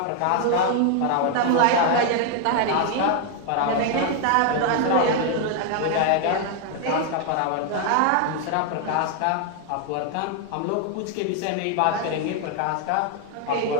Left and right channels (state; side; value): different; both; correlation 0.00